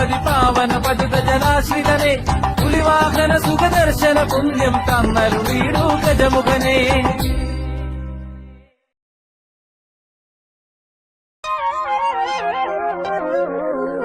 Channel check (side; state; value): both; identical; correlation 1.00